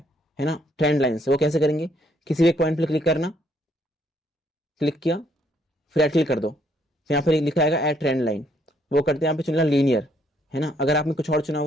ना, ट्रेंड लाइन से। वो कैसे करेंगे, किसी भी एक पॉइंट पर क्लिक करना, क्लिक किया, फिर ऐड क्लिक कर दो, फिर यहाँ पर लिखा आएगा ऐड ट्रेंड लाइन, वो करते हैं यहाँ पे चुनना लीनियर, है ना। अगर आपने कुछ और चुना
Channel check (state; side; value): normal; both; correlation 0.69